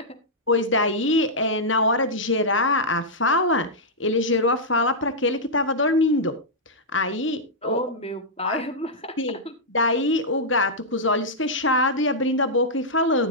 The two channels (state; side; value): normal; both; correlation -0.08